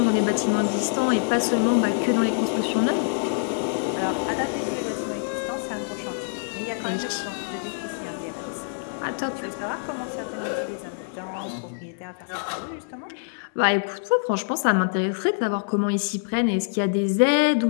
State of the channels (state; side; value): silent; right; 62 dB below the other